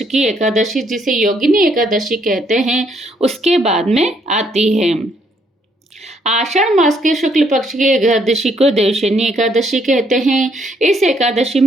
की एकादशी, जिसे योगिनी एकादशी कहते हैं, उसके बाद में आती है। आषाढ़ मास के शुक्ल पक्ष की एकादशी को देवशनी एकादशी कहते हैं। इस एकादशी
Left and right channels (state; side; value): normal; both; correlation 0.70